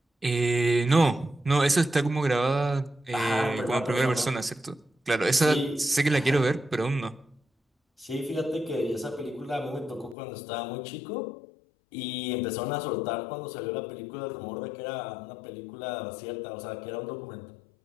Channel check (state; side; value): drops out; right; at 10.2 s